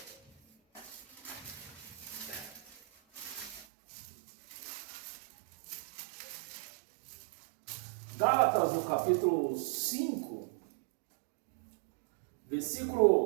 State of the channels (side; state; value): left; drops out; at 3.7 s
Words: Gálatas, no capítulo 5,